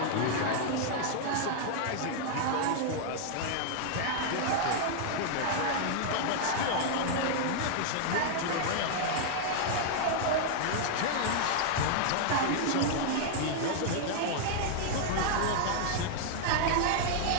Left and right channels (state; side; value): different; both; correlation -0.01